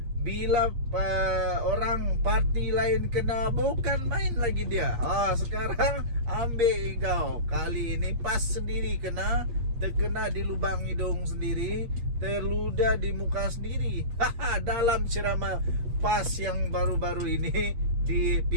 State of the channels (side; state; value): left; late; 8.5 ms